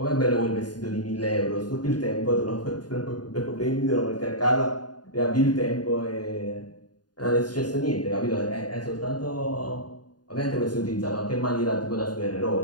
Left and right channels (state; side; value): late; right; 0.70 ms